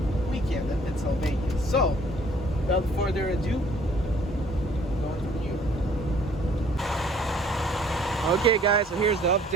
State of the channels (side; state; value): both; normal; correlation 0.58